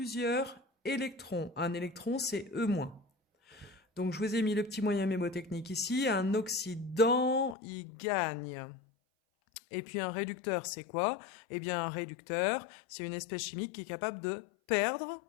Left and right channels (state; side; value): drops out; right; at 7.6 s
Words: électrons. Un électron, c'est E-. Donc, je vous ai mis le petit moyen mémotechnique ici. Un oxydant, il gagne. Et puis, un réducteur, c'est quoi? Eh bien, un réducteur, c'est une espèce chimique qui est capable de perdre